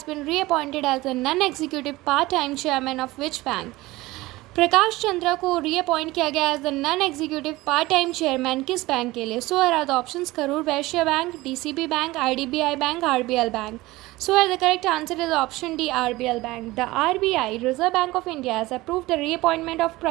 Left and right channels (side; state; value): left; quieter; 19.4 dB